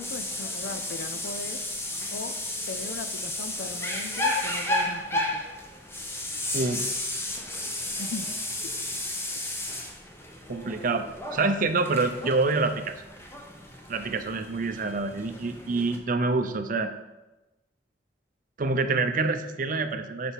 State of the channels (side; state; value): both; normal; correlation 0.19